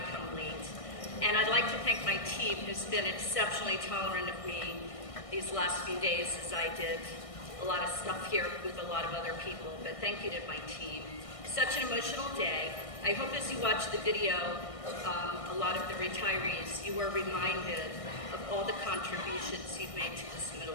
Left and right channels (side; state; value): right; late; 1.6 ms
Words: come late. And I'd like to thank my team who's been exceptionally tolerant of me these last few days as I did a lot of stuff here with a lot of other people, but thank you to my team. Such an emotional day. I hope as you watch the video, a lot of the retirees, you are reminded of all the contributions you've made to this middle